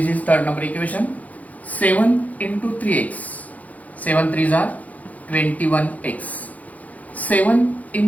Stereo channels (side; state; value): right; late; 0.074 ms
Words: is third number equation. 7 into 3x, 7 3s are 21x. 7